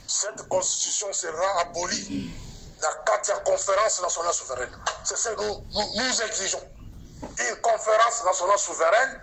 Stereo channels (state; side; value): identical; both; correlation 1.00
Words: Cette constitution sera abolie dans la 4e conférence nationale souveraine. C'est ce que nous exigeons. Une conférence nationale souveraine